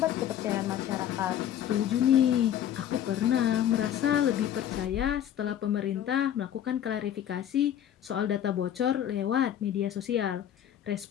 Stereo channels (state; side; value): quieter; right; 10.6 dB